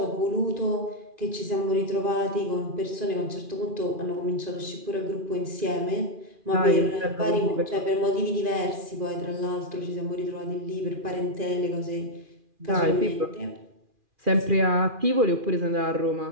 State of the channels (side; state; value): left; late; 2.4 ms